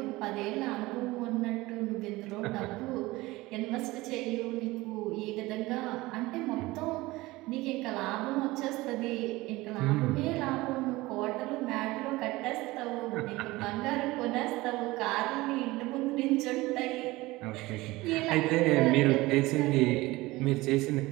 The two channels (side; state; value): left; quieter; 20.1 dB